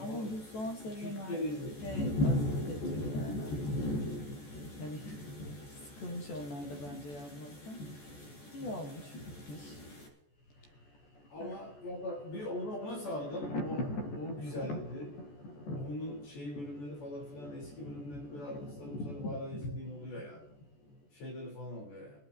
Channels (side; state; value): right; late; 14 ms